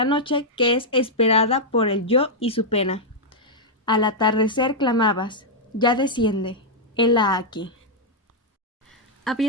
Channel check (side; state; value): both; normal; correlation -0.05